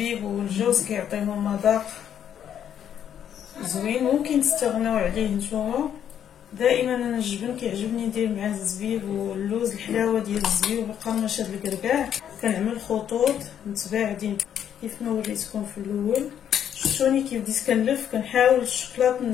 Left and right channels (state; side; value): quieter; right; 9.4 dB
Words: والجوز كيعطيهم مذاق زوين، ممكن تستغناو عليه نتوما. دائما انا الجبن كيعجبني ندير معاه الزبيب واللوز، الحلاوه ديال الزبيب وقرمشه الكركاع. كنعمل خطوط متباعدين كيف ما وريتكم في الاول. شفتوني كيف بديت كنلف، كنحاول الشكلاط